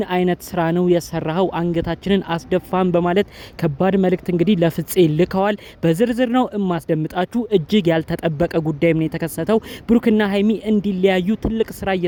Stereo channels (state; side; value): identical; both; correlation 1.00